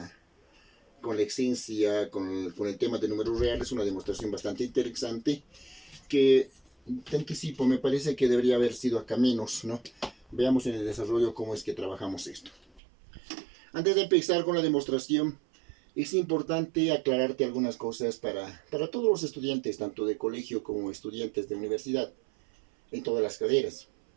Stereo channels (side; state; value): left; drops out; at 12.8 s